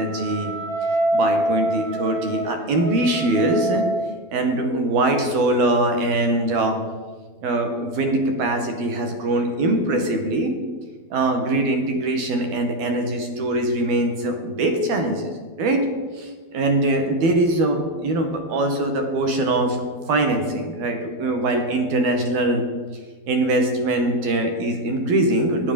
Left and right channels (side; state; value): left; late; 12 ms